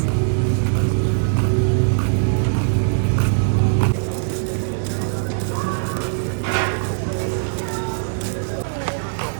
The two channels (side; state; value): left; silent; digital silence